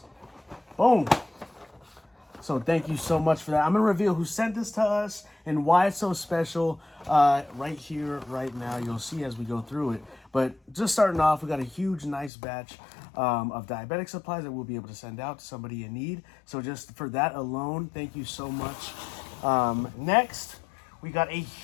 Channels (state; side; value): drops out; right; at 12.3 s